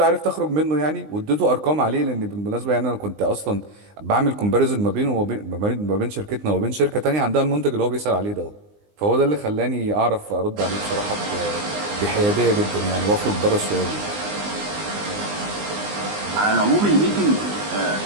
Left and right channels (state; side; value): late; left; 20 ms